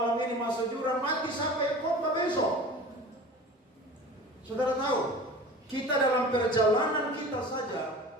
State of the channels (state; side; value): normal; both; correlation 0.39